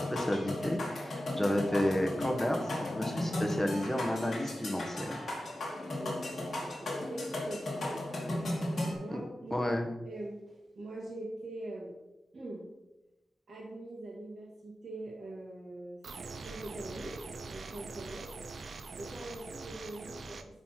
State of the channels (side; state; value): both; normal; correlation 0.93